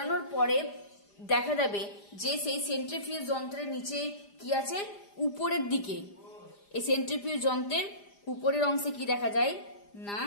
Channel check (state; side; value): late; right; 5.0 ms